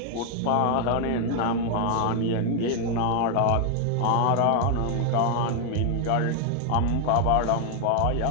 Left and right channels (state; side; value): different; both; correlation 0.00